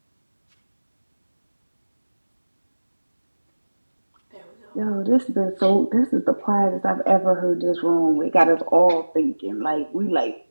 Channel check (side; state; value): both; inverted; correlation -1.00